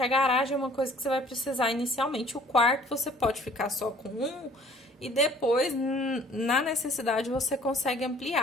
garagem é uma coisa que você vai precisar inicialmente. O quarto você pode ficar só com um e depois, na necessidade, você consegue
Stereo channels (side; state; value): both; normal; correlation 0.54